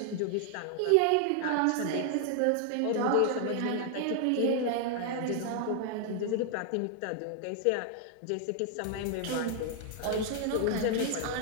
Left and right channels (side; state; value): both; different; correlation 0.00